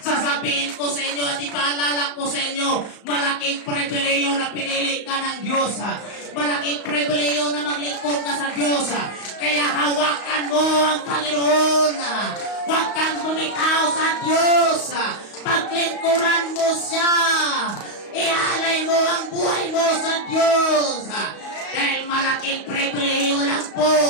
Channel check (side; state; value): right; late; 35 ms